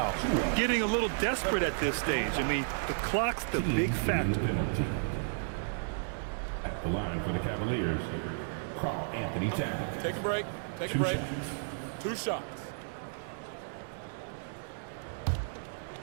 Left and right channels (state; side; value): silent; left; digital silence